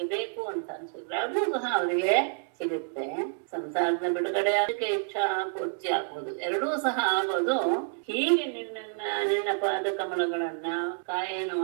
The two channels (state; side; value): silent; left; 59 dB below the other